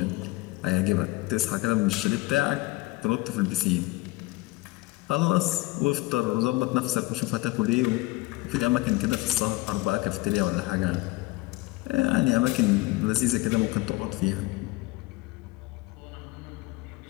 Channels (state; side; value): quieter; right; 21.3 dB